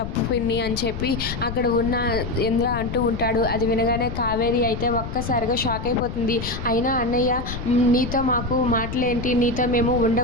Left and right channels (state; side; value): noise; left; rumble, 7 dB below the sound